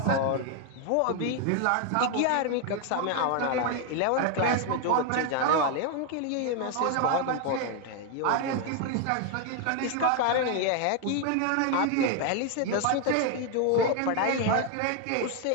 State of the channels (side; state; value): both; different; correlation 0.01